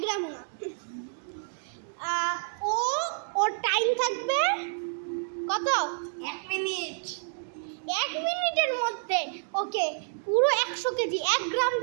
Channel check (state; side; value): silent; left; digital silence